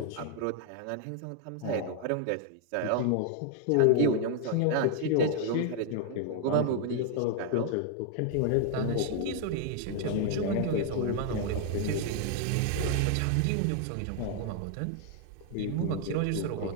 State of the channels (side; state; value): both; different; correlation 0.00